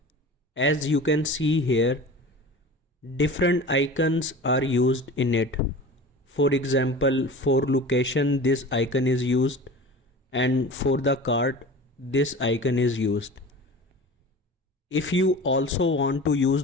As you can see here, different icons are used in it. For example, for location this icon is used and for the cart this icon is used. If you also want to use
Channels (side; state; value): both; normal; correlation 0.37